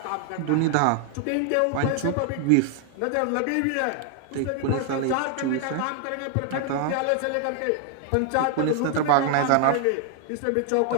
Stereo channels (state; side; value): different; both; correlation 0.00